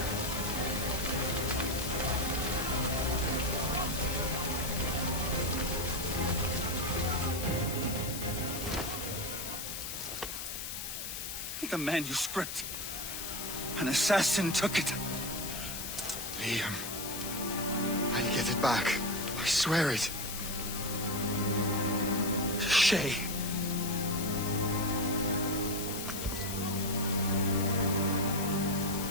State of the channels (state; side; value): noise; left; hiss, 6 dB below the sound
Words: The manuscript. An assassin took it. Liam. I'll get it back. I swear it. Shay.